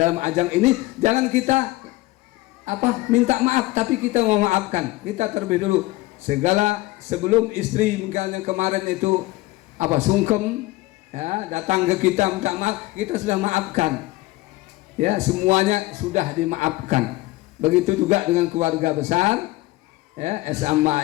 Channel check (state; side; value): quieter; right; 19.3 dB